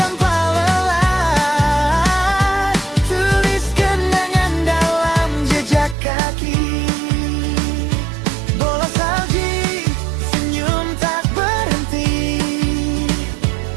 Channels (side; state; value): left; drops out; at 6.0 s